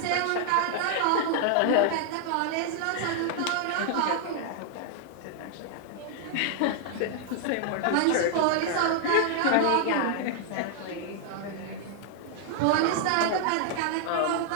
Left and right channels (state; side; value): different; both; correlation -0.01